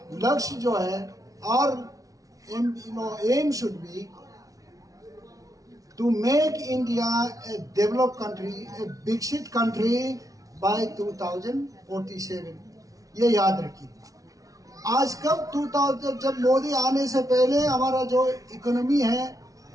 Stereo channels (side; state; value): left; late; 0.17 ms